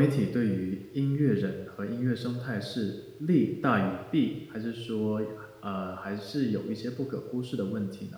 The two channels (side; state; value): both; identical; correlation 1.00